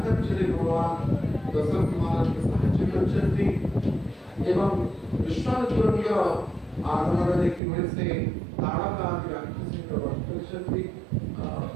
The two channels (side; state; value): left; drops out; at 7.6 s